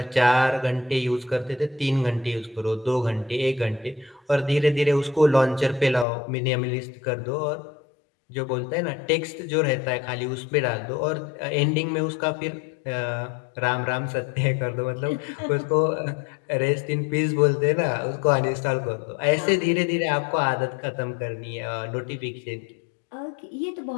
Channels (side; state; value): right; drops out; at 6.1 s